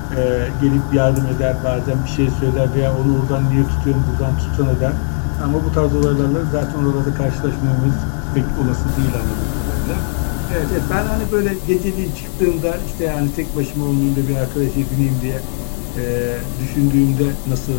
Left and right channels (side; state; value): right; silent; 60 dB below the other